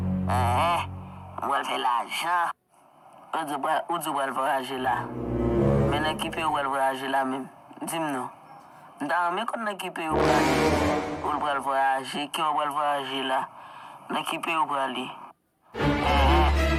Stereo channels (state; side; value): identical; both; correlation 1.00